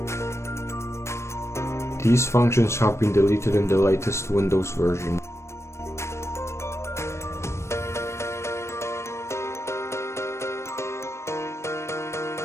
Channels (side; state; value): right; late; 0.13 ms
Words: These functions have been deleted in the latest Windows version.